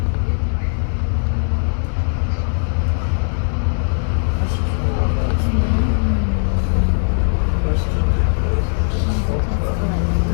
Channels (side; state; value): right; silent; 67 dB below the other